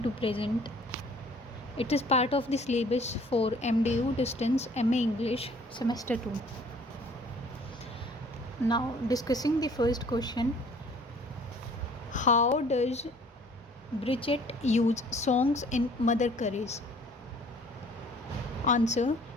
to present. It is part of the syllabus for MDU Distance MA English semester 2. Now discussing the first question. How does Brecht use songs in Mother Courage? Answer:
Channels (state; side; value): normal; both; correlation 0.54